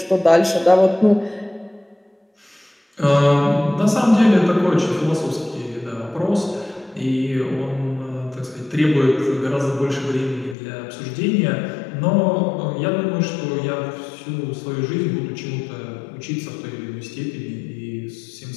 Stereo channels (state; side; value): drops out; right; at 10.6 s